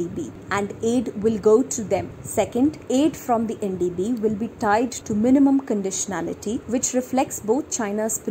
and aid will go to them. Second, aid from the NDB will be tied to minimum conditionality, which reflects both China's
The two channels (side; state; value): both; identical; correlation 1.00